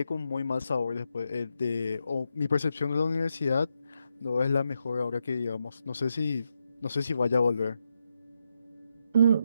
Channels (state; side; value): inverted; both; correlation -0.82